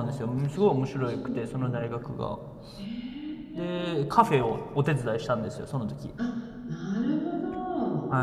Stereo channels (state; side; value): identical; both; correlation 1.00